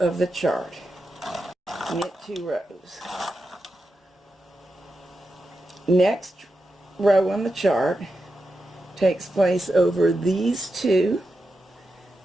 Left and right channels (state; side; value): normal; both; correlation 0.89